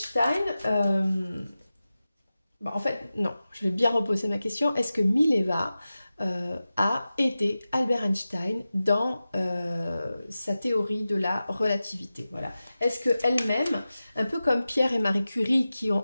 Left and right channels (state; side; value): inverted; both; correlation -0.94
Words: Bon, en fait, non, je vais bien reposer ma question. Est-ce que Mileva a aidé Albert Einstein dans sa théorie de la relativité? Voilà. Est-ce qu'elle-même, un peu comme Pierre et Marie Curie, qui